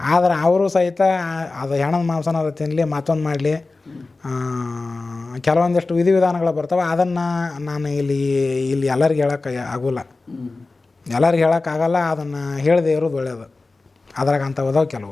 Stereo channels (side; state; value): right; quieter; 3.5 dB